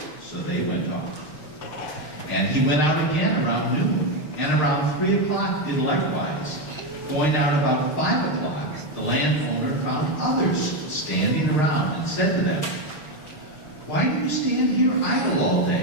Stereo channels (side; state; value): right; late; 6.5 ms